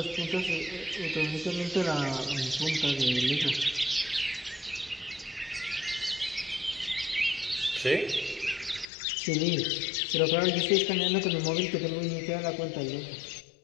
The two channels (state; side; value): drops out; right; at 8.8 s